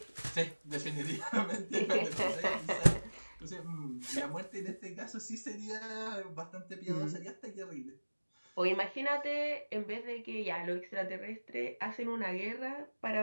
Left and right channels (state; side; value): inverted; both; correlation -1.00